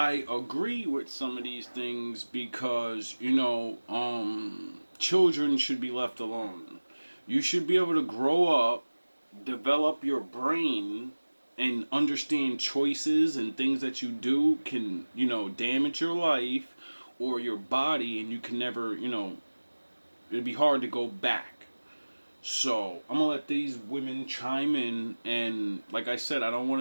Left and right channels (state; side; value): inverted; both; correlation -1.00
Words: agree with some of these things because, children should be left alone. You should be able to grow up, develop your brain, and understand choices and things that you do can, damage your life or your body, and you can never, it'd be hard to go back. So I'm gonna let these women chime in, and like I said, I don't